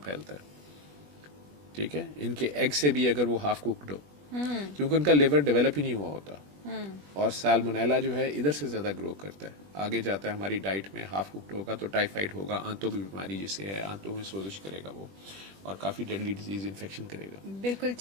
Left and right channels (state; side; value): late; left; 20 ms